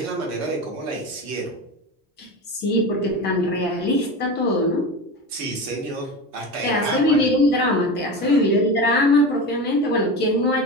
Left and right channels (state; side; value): normal; both; correlation 0.26